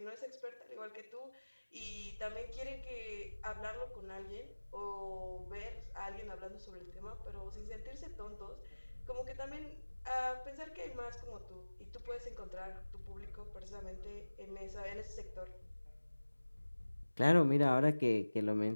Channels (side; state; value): both; inverted; correlation -1.00